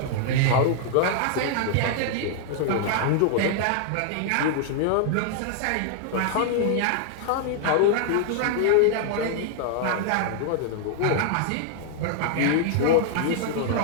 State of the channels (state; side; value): different; both; correlation -0.01